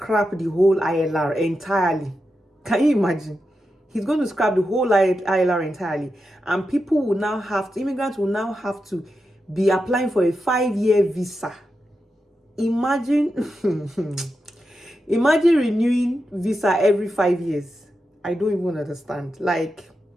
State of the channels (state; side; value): normal; both; correlation 0.88